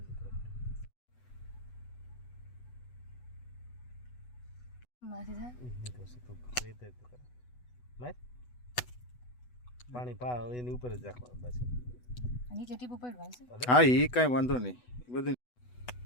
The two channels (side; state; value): right; late; 8.1 ms